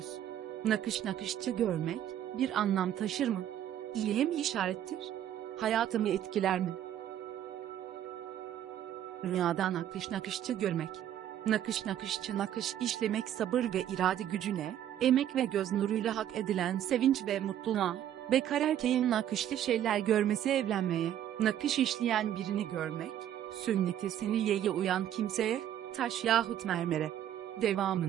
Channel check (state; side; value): quieter; left; 10.9 dB